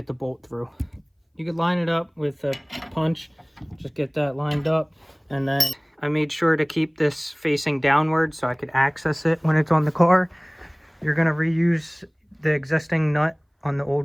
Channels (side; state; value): both; identical; correlation 1.00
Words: the bolt through. You could line it up with a punch, just get that lined up. And then I made sure to keep this facing downward so I could access it when it's on the car. You're going to reuse the existing nut on the